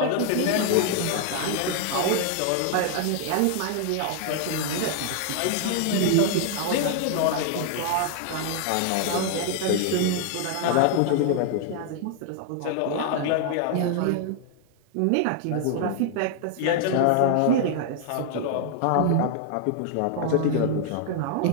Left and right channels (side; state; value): both; different; correlation 0.00